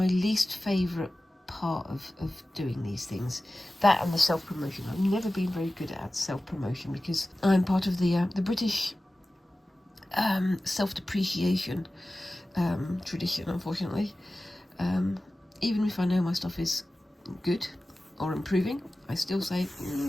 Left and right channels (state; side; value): normal; both; correlation 0.96